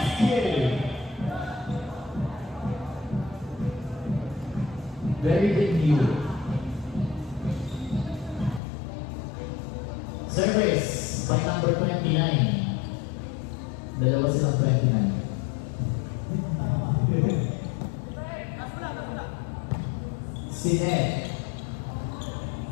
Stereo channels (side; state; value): right; drops out; at 8.6 s